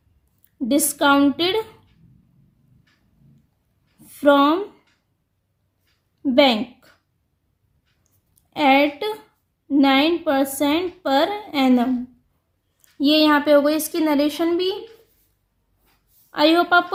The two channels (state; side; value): identical; both; correlation 1.00